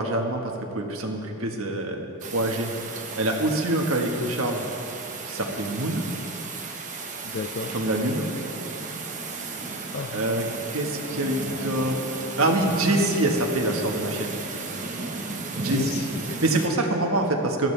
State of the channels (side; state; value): both; normal; correlation 0.22